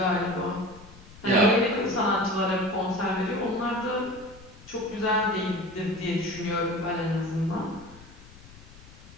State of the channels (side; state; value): left; noise; rumble, 21 dB below the sound